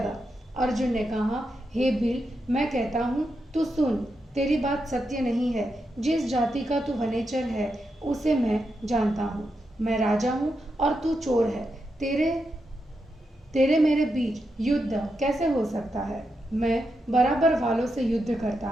अर्जुन ने कहा, हे भील, मैं कहता हूँ, तू सुन, तेरी बात सत्य नहीं है। जिस जाति का तू वनेचर है उसे मैं जानता हूँ। मैं राजा हूँ और तू चोर है। तेरे मेरे बीच युद्ध कैसे हो सकता है? मैं बराबर वालों से युद्ध करता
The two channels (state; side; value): normal; both; correlation 0.85